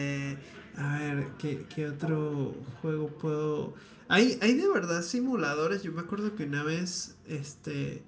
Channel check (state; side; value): identical; both; correlation 1.00